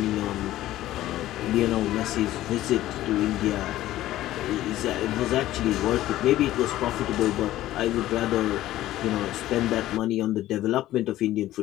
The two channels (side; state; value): right; quieter; 14.7 dB